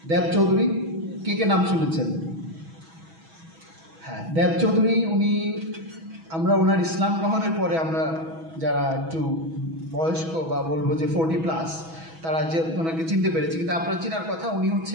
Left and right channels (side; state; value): left; late; 6.2 ms